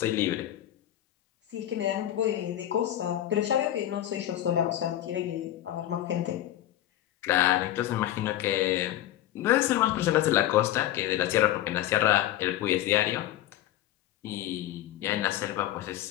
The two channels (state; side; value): quieter; right; 13.1 dB